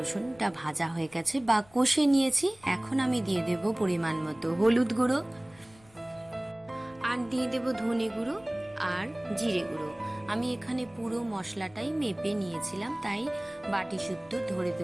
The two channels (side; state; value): left; noise; rumble, 27 dB below the sound